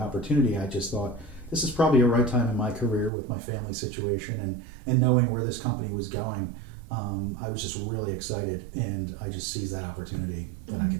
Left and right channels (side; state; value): left; drops out; at 3.1 s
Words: I just thought this is probably a right time in my career with my family situation and knowing where this company was going. I was just really excited, and I just seized that opportunity that I